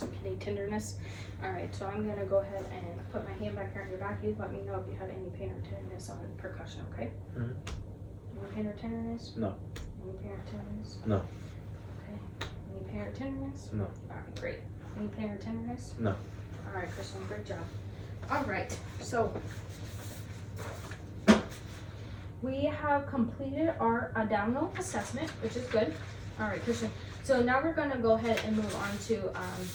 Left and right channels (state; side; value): identical; both; correlation 1.00